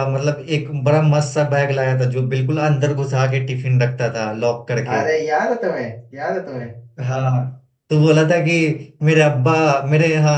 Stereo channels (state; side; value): identical; both; correlation 1.00